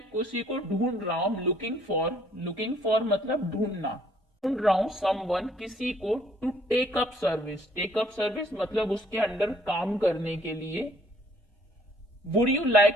किसी को ढूंढ रहा हूं, लुकिंग फॉर मतलब ढूंढना, ढूंढ रहा हूं समवन, किसी को, टू टेक अप सर्विस मतलब उसके अंडर काम करने के लिए। Would you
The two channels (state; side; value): normal; both; correlation 0.62